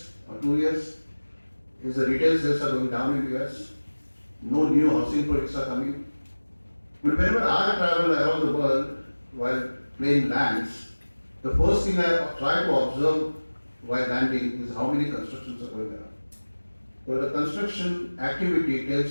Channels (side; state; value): both; inverted; correlation -1.00